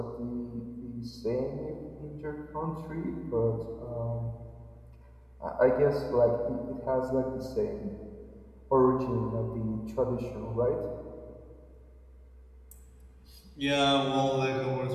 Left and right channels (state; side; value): identical; both; correlation 1.00